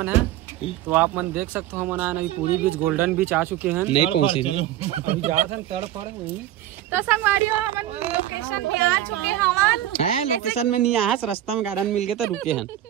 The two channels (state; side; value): quieter; left; 12.9 dB